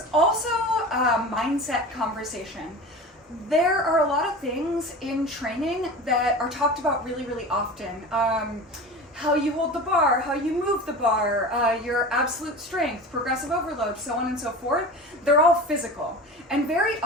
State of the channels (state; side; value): normal; both; correlation 0.33